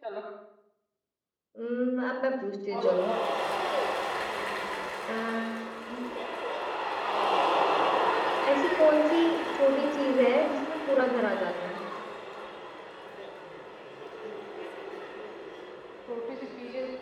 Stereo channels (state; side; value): identical; both; correlation 1.00